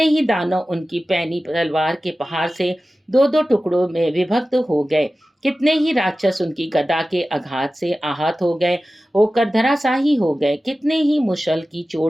ही दानव उनकी पैनी तलवार के प्रहार से 2-2 टुकड़ों में विभक्त हो गए। कितने ही राक्षस उनकी गदा के आघात से आहत हो गए, होकर धराशाही हो गए। कितने ही मुशल की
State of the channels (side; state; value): both; normal; correlation 0.95